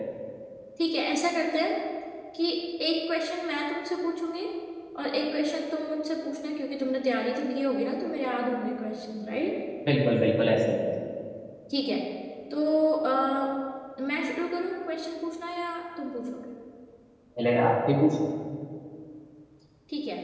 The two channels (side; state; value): both; identical; correlation 1.00